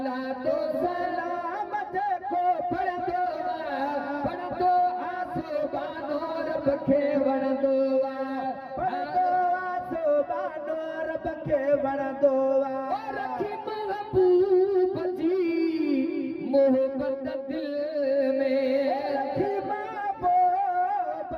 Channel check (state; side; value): identical; both; correlation 1.00